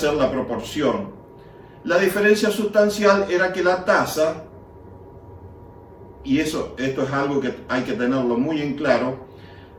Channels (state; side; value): identical; both; correlation 1.00